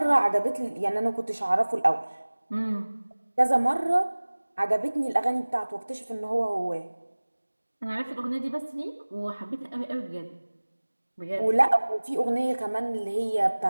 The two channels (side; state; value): both; inverted; correlation -1.00